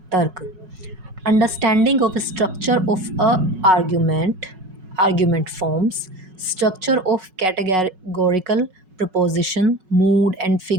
तर्क। Understanding of structure of a argument, argument forms, structure of categorical preposition, mood and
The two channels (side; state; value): left; late; 5.4 ms